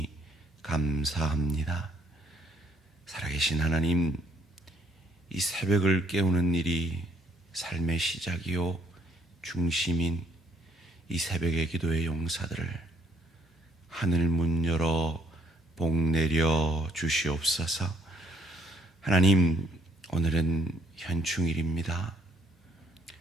감사합니다. 살아계신 하나님, 이 새벽을 깨우는 일이 삶의 시작이요 중심인 이 새벽의 기도의 용사들을 하늘 문 열어 복 내려 주시옵소서. 하나님, 오늘은 현충일입니다.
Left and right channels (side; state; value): both; normal; correlation 0.67